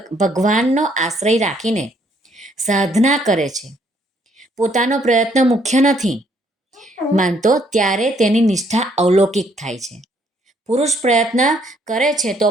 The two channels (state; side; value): normal; both; correlation 0.68